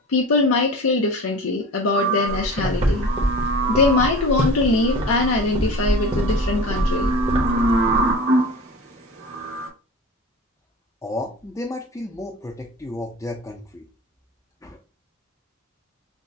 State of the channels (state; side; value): normal; both; correlation 0.35